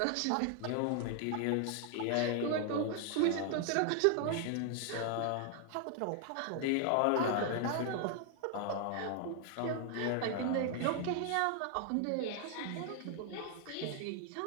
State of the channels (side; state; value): both; different; correlation 0.00